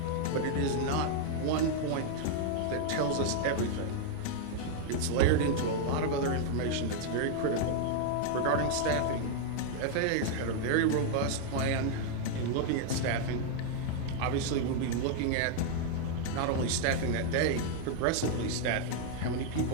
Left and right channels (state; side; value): different; both; correlation 0.00